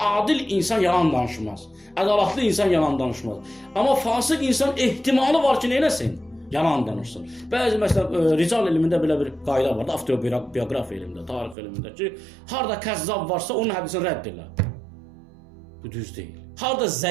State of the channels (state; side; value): drops out; left; at 11.6 s